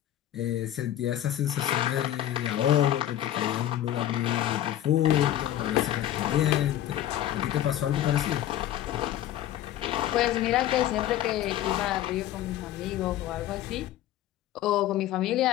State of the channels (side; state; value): right; quieter; 12.5 dB